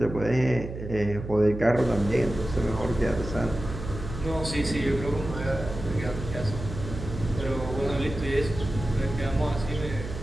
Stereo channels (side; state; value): right; noise; hum, 9 dB below the sound